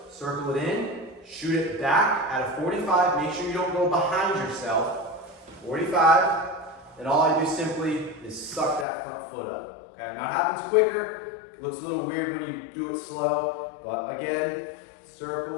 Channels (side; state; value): right; drops out; at 8.8 s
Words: circle it in, shoot it back at a 45. Make sure you don't go behind yourself. 45. and all I do simply is suck that front foot up. Okay, now it happens quicker, it looks a little weird when you do it slow, but again,